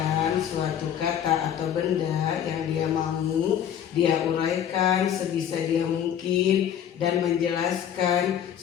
suatu kata atau benda yang dia mau, dia uraikan sebisa dia mungkin dan menjelaskan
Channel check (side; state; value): right; quieter; 9.5 dB